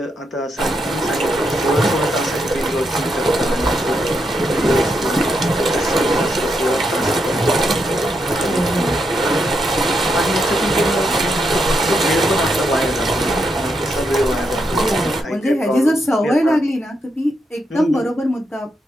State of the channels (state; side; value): normal; both; correlation 0.81